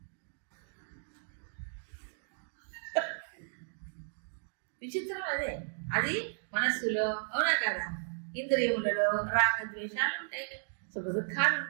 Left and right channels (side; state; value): left; silent; digital silence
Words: విచిత్రం అదే. అది మనస్సులో, అవునా కదా? ఇంద్రియములలో రాగద్వేషాలు ఉంటాయి, సుఖ దుఃఖాలు